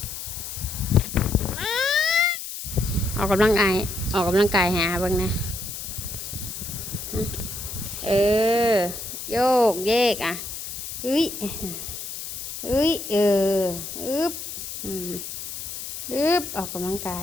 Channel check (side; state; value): left; noise; hiss, 8 dB below the sound